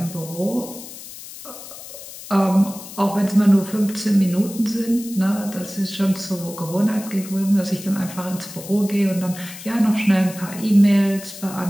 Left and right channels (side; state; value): left; noise; hiss, 14 dB below the sound